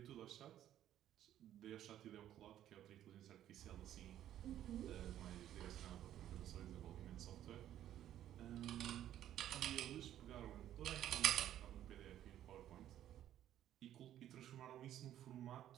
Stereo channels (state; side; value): quieter; left; 11.7 dB